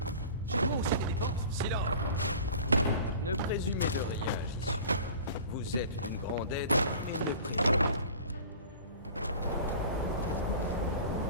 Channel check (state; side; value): inverted; both; correlation -0.42